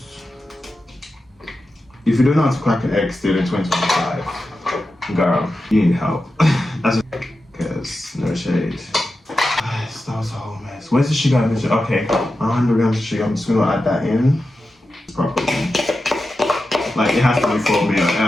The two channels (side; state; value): both; normal; correlation 0.91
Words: If you don't know how to crack an egg still in 2025, girl, you need help. That's because no shade. Guys, that was a whole mess. Where's the sugar? Okay, 100 grams of sugar. I'm just gonna add that in properly. Like it has to be for me or